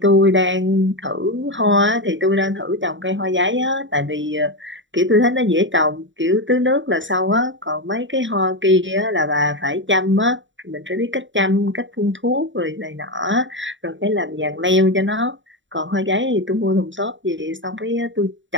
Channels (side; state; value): left; late; 0.55 ms